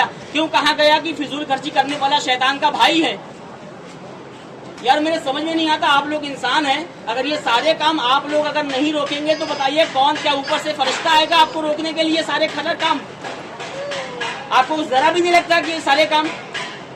کیوں کہا گیا کہ فضول خرچی کرنے والا شیطان کا بھائی ہے؟ یار میرے سمجھ میں نہیں آتا، آپ لوگ انسان ہیں، اگر یہ سارے کام آپ لوگ اگر نہیں روکیں گے تو بتائیے کون کیا اوپر سے فرشتہ آئے گا آپ کو روکنے کے لیے سارے کھڑا کام؟ آپ کو ذرا بھی نہیں لگتا کہ یہ سارے کام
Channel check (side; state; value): both; identical; correlation 1.00